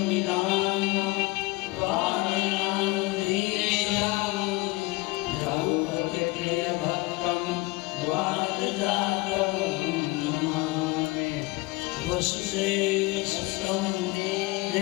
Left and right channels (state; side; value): quieter; right; 23.1 dB